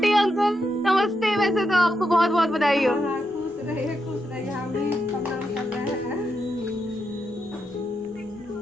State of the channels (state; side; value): normal; both; correlation 0.83